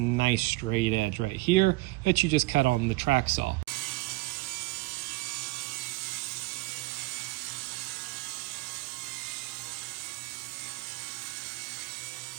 straight edge right here that you just cut on the track saw.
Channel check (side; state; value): left; quieter; 21.1 dB